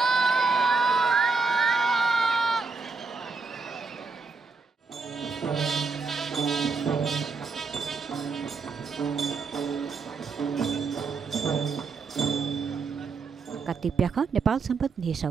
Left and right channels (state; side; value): quieter; left; 4.5 dB